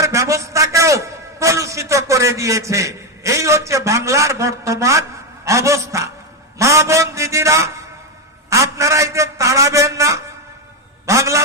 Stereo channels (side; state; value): both; normal; correlation 0.08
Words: ব্যবস্থাকেও কলুষিত করে দিয়েছে। এই হচ্ছে বাংলার বর্তমান অবস্থা। মা বোন দিদিরা, আপনারা এদের তাড়াবেন না।